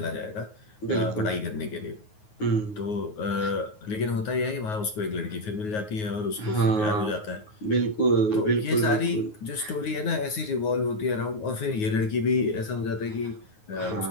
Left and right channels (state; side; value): late; right; 9.5 ms